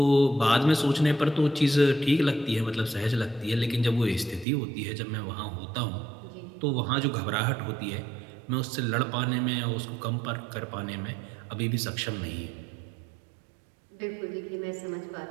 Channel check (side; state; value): left; drops out; at 4.5 s